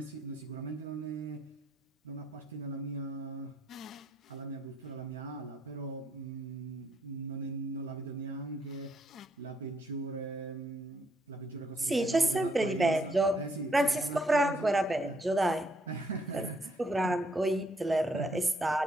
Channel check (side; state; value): both; normal; correlation 0.71